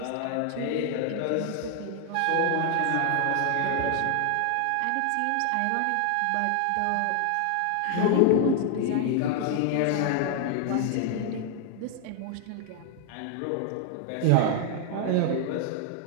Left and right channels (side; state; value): both; different; correlation 0.00